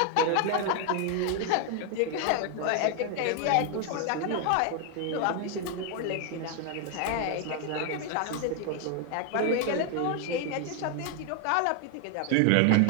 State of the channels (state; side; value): different; both; correlation 0.00